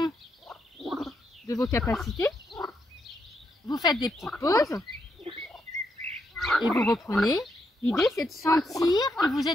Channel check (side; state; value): both; normal; correlation 0.80